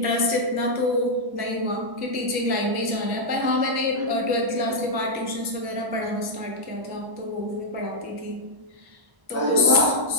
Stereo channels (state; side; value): late; left; 1.0 ms